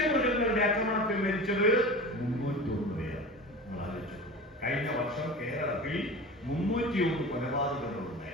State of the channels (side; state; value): both; normal; correlation 0.33